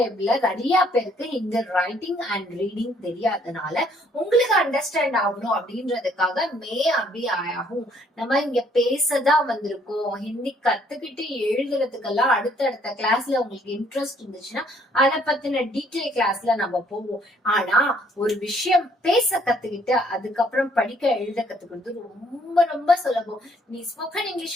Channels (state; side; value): normal; both; correlation 0.64